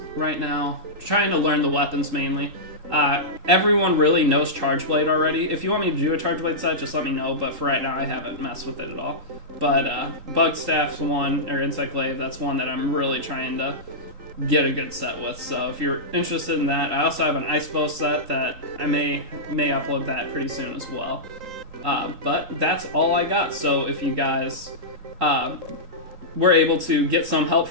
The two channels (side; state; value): left; late; 3.8 ms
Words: right now, trying to learn the weapons mainly. Everyone really knows Charge Blade already. If you want me to do a Charge Blade set, just let me know, but for right now I haven't messed with it at all. But Bug Staff's one, or Insect Glaive, that's one that I'm really trying to get a good set with. So if you're interested in that, I also have an Ice Bow set that I may upload that pretty soon as well. But that's all I got. So if you guys were able to get some help